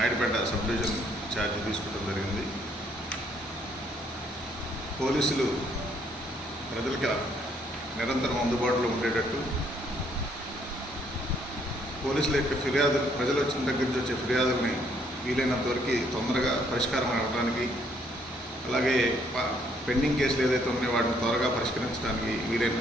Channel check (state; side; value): normal; both; correlation 0.67